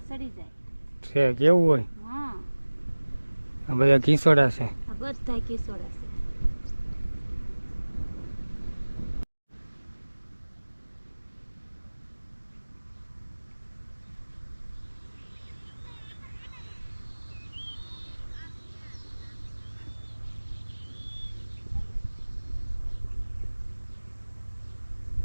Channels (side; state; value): both; inverted; correlation -1.00